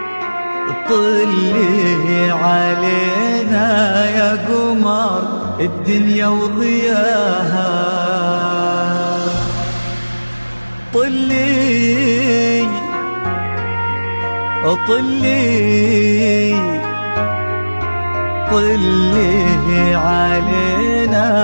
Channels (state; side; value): inverted; both; correlation -1.00